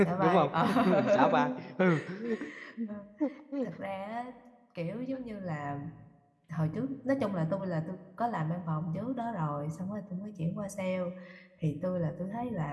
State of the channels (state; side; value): identical; both; correlation 1.00